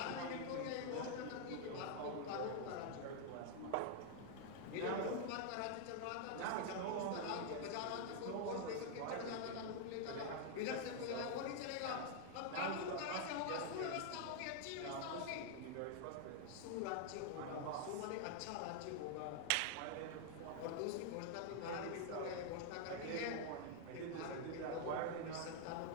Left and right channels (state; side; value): different; both; correlation 0.00